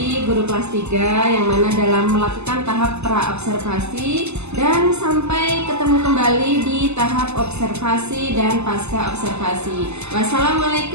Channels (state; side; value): late; left; 0.81 ms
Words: guru kelas 3 yang mana dalam melakukan tahap pra-observasi dan sampai ketemu kembali di tahap observasi dan pasca observasi.